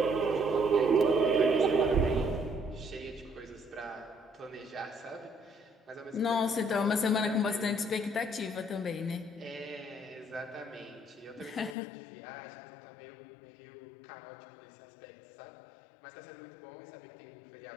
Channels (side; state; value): right; drops out; at 11.8 s